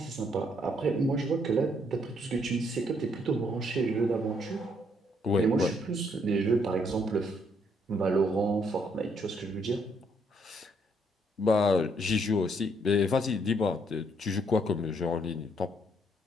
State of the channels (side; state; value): both; normal; correlation 0.70